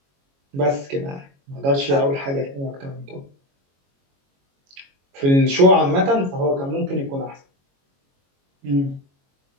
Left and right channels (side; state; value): left; late; 22 ms